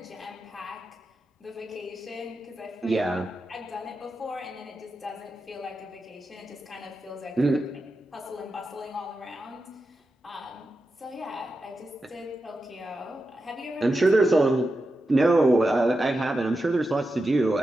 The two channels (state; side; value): normal; both; correlation 0.90